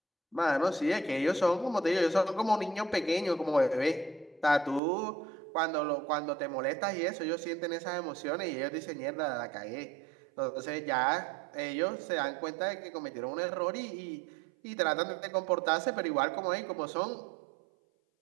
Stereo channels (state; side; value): drops out; left; at 4.8 s